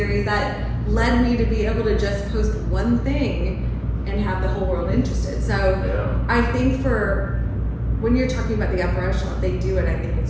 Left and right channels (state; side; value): identical; both; correlation 1.00